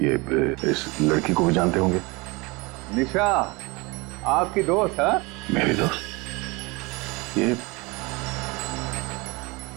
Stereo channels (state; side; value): quieter; left; 25.5 dB